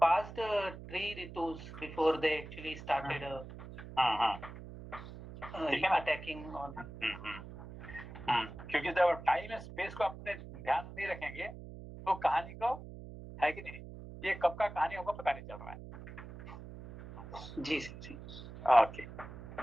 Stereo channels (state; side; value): noise; right; hum, 13 dB below the sound